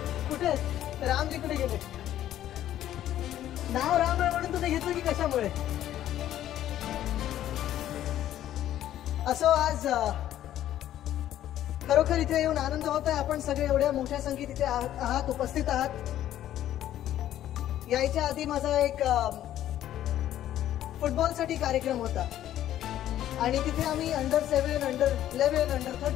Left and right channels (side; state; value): right; quieter; 12.2 dB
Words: कुठे रामजी कुठे गेले? नाव राम आहे म्हणून तुम्ही घेतलं की कशामुळे? असो, आज खरोखर इथे येऊन आनंद होत आहे. आपण सगळे एवढ्या मोठ्या संख्येत इथे आहात, उपस्थित आहात. यायच्या आधी माझा एक फुटबॉलसाठी कार्यक्रम होता आणि तिथे आम्ही अंडर-7, अंडर-11,